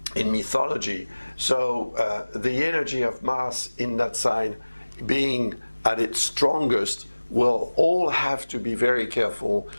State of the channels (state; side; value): inverted; both; correlation -1.00